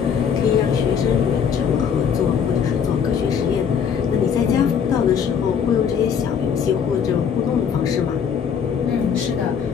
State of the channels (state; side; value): quieter; right; 7.4 dB